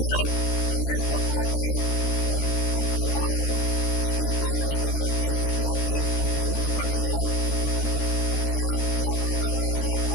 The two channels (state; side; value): late; right; 13 ms